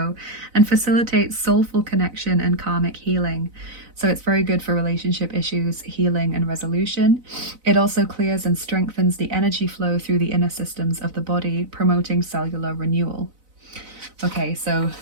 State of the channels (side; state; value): left; late; 4.0 ms